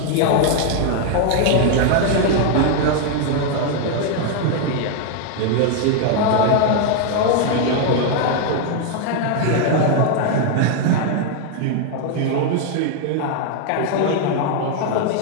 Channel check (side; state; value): both; different; correlation 0.00